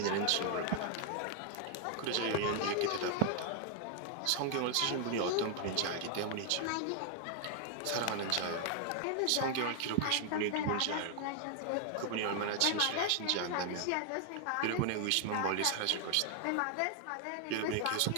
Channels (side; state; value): both; different; correlation 0.00